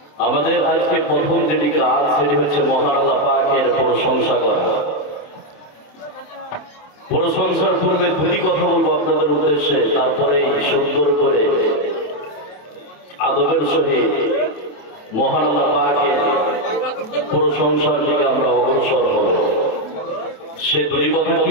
আমাদের আজকে প্রথম যেটি কাজ সেটি হচ্ছে মহান আল্লাহ পাকের প্রশংসা করা। প্রশংসার পূর্বে দুটি কথা বলবো আপনাদের উদ্দেশ্যে, তারপরে সুন্দর করে আদবের সহিত মহান আল্লাহ পাকের প্রশংসার দিকে আমরা অগ্রসর হব। সে দুটি কথা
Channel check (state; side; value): late; right; 27 ms